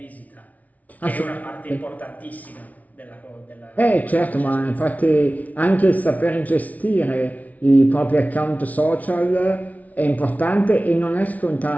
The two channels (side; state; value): right; late; 0.072 ms